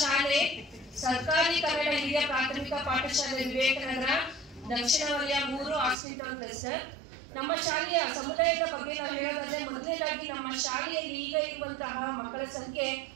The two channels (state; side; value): drops out; left; at 6.0 s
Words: ಶಾಲೆ ಸರ್ಕಾರಿ ಕನ್ನಡ ಹಿರಿಯ ಪ್ರಾಥಮಿಕ ಪಾಠಶಾಲೆ ವಿವೇಕನಗರ ದಕ್ಷಿಣ ವಲಯ 3 ಹಾಸ್ಪಿಟಲ್ ಕ್ಲಸ್ಟರ್. ನಮ್ಮ ಶಾಲೆಯ ಸಮುದಾಯದ ಬಗ್ಗೆ ನಾವು ಹೇಳೋದಾದ್ರೆ ಮೊದಲನೇದಾಗಿ ನಮ್ಮ ಶಾಲೆಯಲ್ಲಿ ಈಗ ಇರುವಂತಹ ಮಕ್ಕಳ ಸಂಖ್ಯೆ